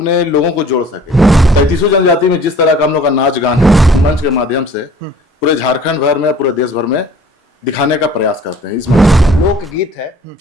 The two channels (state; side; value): normal; both; correlation 0.50